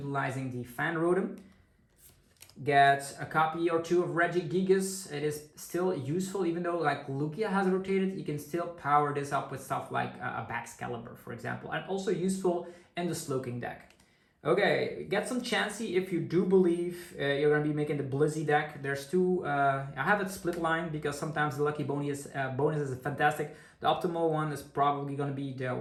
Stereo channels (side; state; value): both; identical; correlation 1.00